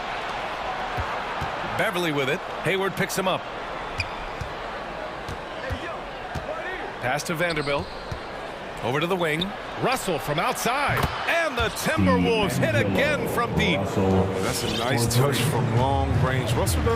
Beverly with it. Hayward picks him up. Pass to Vanderbilt. Over to the wing. Russell from outside. And the Timberwolves hit again from deep. That's a nice touch from long range. Russell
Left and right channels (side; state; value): both; identical; correlation 1.00